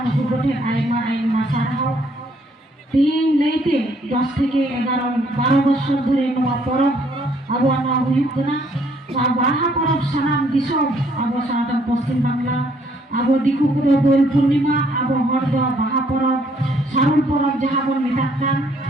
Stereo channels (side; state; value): both; normal; correlation 0.66